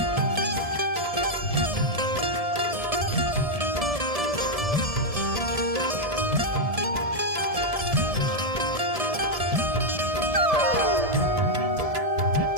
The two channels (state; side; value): late; left; 1.7 ms